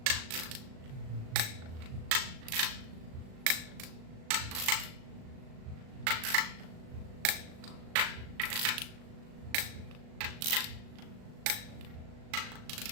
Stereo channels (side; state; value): left; late; 37 ms